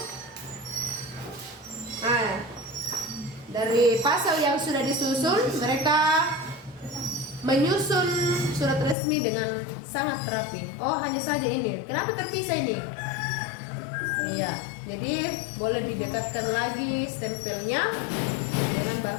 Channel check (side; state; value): right; drops out; at 9.0 s